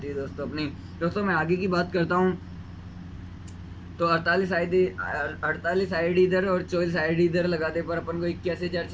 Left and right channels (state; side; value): identical; both; correlation 1.00